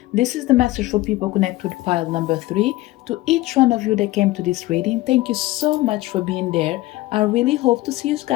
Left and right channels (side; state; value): right; quieter; 18.1 dB